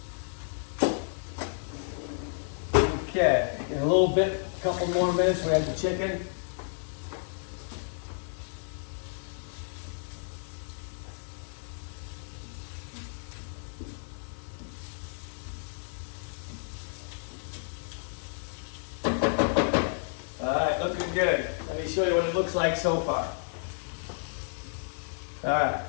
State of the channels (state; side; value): silent; right; digital silence